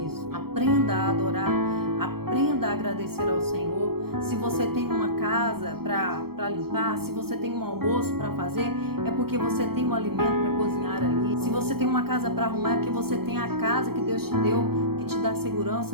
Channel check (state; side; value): late; left; 0.95 ms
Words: Aprenda a adorar, aprenda a agradecer ao Senhor. Se você tem uma casa para limpar, se você tem um almoço para fazer, é porque você tem um alimento para cozinhar ali. Se você tem uma casa para arrumar, é porque você tem a casa que Deus te deu, que te dá